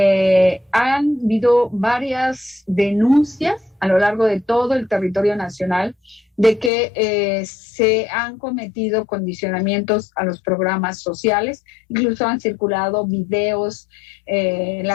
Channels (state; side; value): drops out; right; at 6.7 s